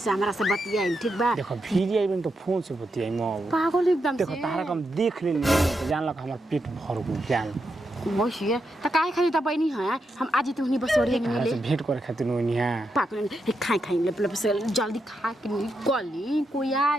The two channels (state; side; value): normal; both; correlation 0.84